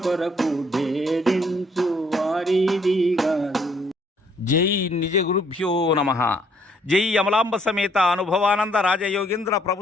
కొరకు భేదించు వారిది గాదు. జై నిజ గురుభ్యో నమః. జై అమలాంబ సమేత అనుభవానంద రాజయోగేంద్ర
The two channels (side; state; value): both; normal; correlation 0.66